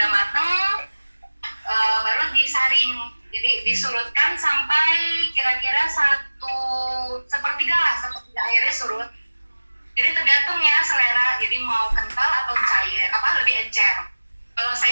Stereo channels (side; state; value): both; inverted; correlation -1.00